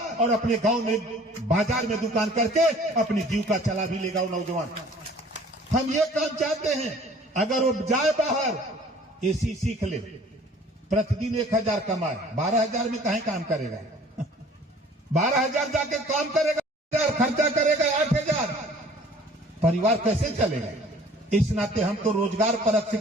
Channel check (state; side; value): normal; both; correlation 0.52